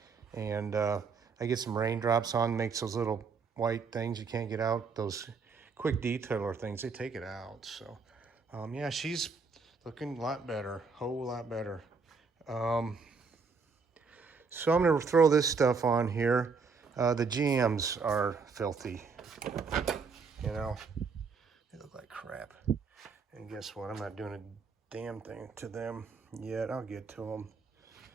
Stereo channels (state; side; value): quieter; left; 5.0 dB